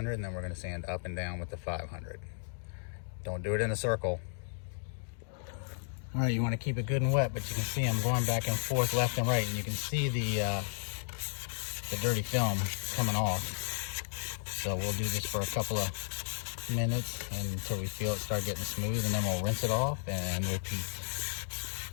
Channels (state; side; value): silent; right; digital silence